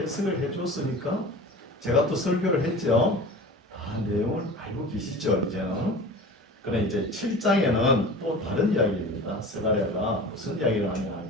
해줬으니까 제가 또 설교를 했죠. 다 내용을 알고 계시죠, 이제는. 그러나 이제 7장에는 또 다른 이야기입니다. 스가랴가 무슨 이야기를 하냐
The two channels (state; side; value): normal; both; correlation 0.37